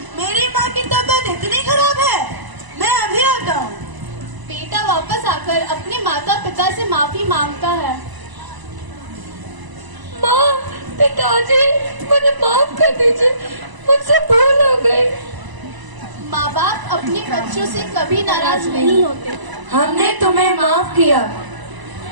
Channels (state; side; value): late; left; 1.0 ms